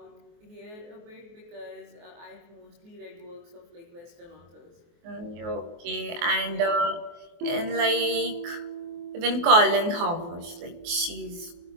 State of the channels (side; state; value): left; late; 24 ms